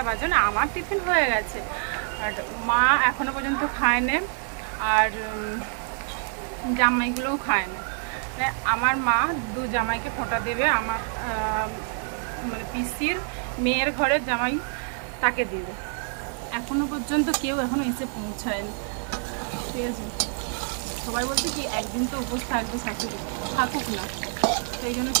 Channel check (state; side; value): silent; left; 57 dB below the other